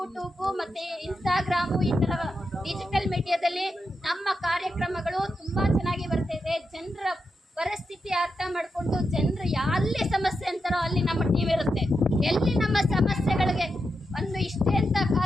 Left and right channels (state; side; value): normal; both; correlation 0.87